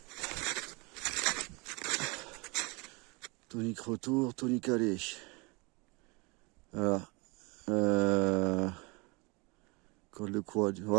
Tonique retour, tonique aller. Voilà. Col de quoi?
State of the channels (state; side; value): quieter; left; 27.6 dB